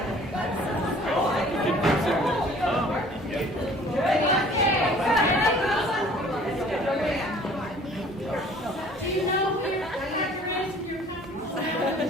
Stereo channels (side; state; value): both; normal; correlation 0.52